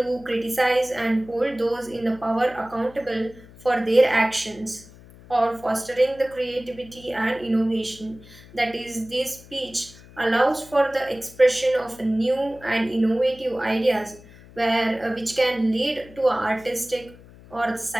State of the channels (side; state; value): left; noise; hum, 21 dB below the sound